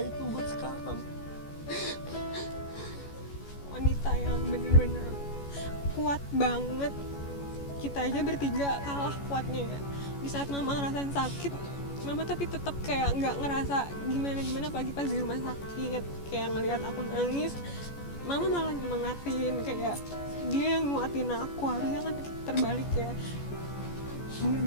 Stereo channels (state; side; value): late; right; 14 ms